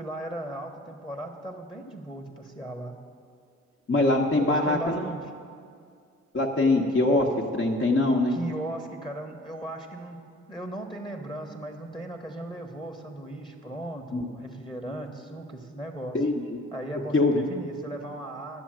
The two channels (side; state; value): both; normal; correlation 0.49